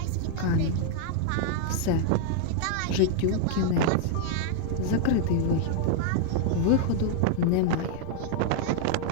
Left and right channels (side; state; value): both; different; correlation -0.01